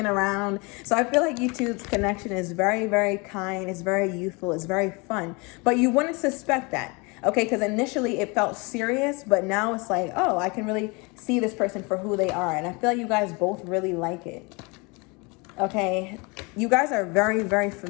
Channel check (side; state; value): right; quieter; 28.5 dB